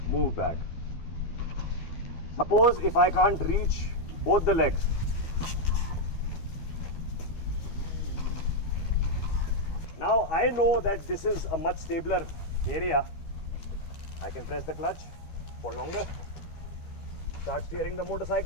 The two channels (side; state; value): right; late; 12 ms